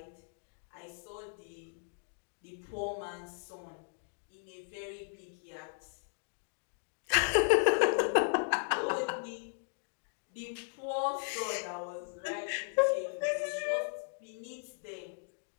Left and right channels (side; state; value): right; silent; digital silence